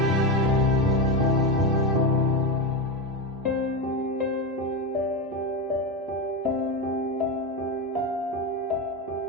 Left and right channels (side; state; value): both; normal; correlation 0.15